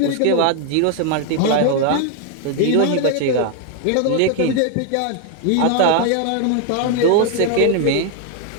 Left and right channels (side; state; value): both; different; correlation 0.00